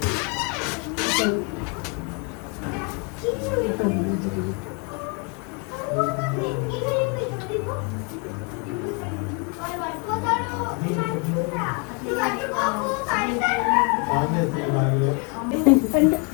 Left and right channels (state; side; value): quieter; right; 34.9 dB